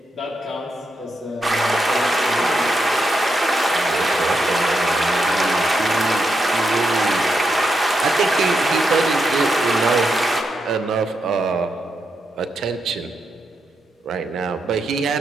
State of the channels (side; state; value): both; normal; correlation 0.83